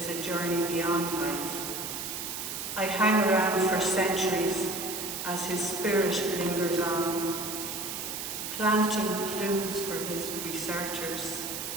a journey beyond life. I hang around for centuries as his spirit lingers on, planting clues for his researchers,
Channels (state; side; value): noise; right; hiss, 5 dB below the sound